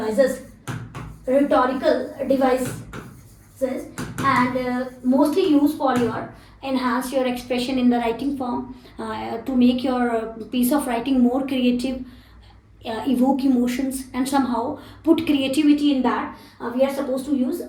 and mostly used for your enhance your expression in the writing form, to make your piece of writing more creative, evoke emotions and somehow put creativity in that. We are supposed to use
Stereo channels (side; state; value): both; identical; correlation 1.00